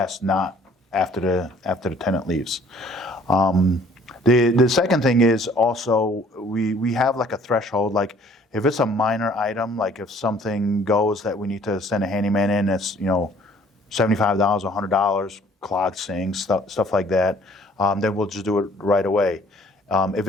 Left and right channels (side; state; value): both; normal; correlation 0.57